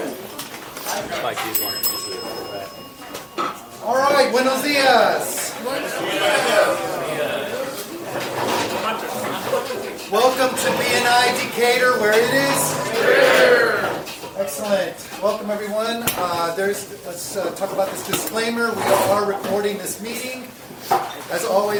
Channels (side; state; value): both; identical; correlation 1.00